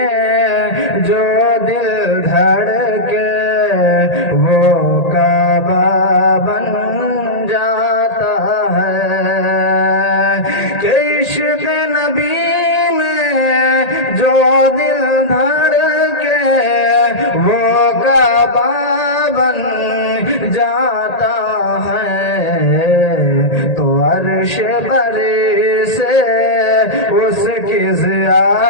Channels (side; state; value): right; late; 1.8 ms